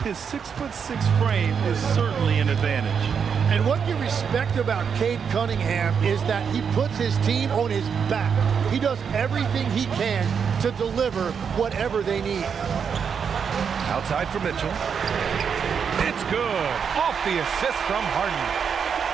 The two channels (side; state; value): left; quieter; 6.8 dB